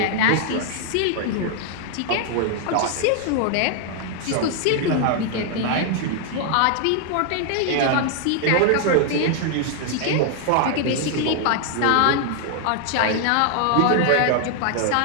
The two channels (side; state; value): both; different; correlation 0.00